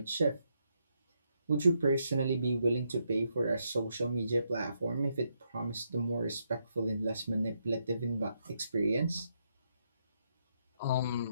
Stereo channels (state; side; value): inverted; both; correlation -0.79